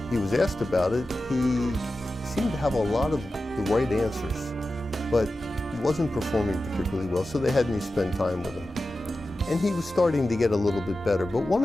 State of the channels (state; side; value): normal; both; correlation 0.93